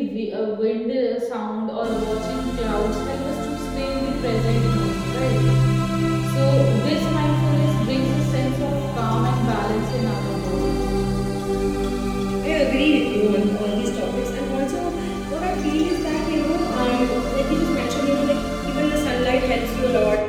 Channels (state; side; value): identical; both; correlation 1.00